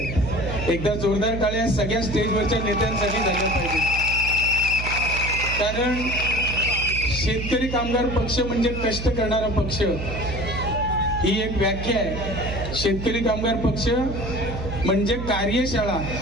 एकदा जोरदार टाळ्या सगळ्या स्टेजवरच्या नेत्यांसाठी झाल्या पाहिजे. कारण शेतकरी कामगार पक्ष म्हणजे कष्ट करणारा पक्ष, ही एक व्याख्या आहे. शेतकरी कामगार पक्ष म्हणजे कार्यशाळा.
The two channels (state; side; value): noise; right; hum, 6 dB below the sound